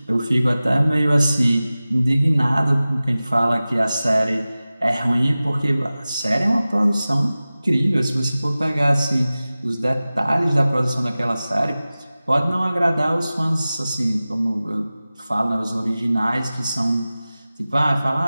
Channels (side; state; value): both; inverted; correlation -0.97